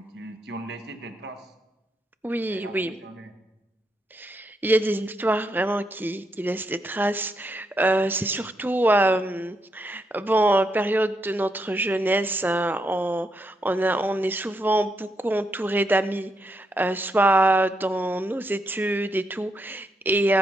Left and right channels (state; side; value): normal; both; correlation 0.80